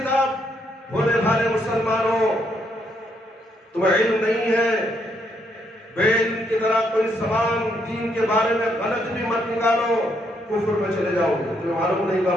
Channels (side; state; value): both; normal; correlation 0.74